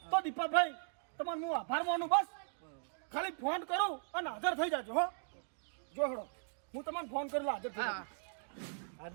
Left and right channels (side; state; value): left; silent; digital silence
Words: તો દીપાભાઈ તમારે હું આભાર માનું. બસ ખાલી ફોન કરું અને હાજર થઈ જાજો હો. જો હેડો હું તમને ફોન કરી હાજર થઈ હા.